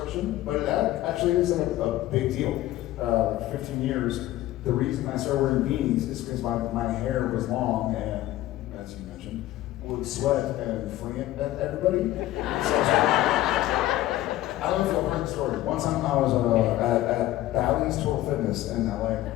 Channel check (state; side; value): quieter; right; 15.2 dB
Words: But it actually is a big deal. 15 years. The reason I started wearing beanies is because my hair was long and, as you mentioned, would sweat and fling it at everybody. So I don't know if you'll heard the story. One time I was at Bally's Total Fitness in LA. And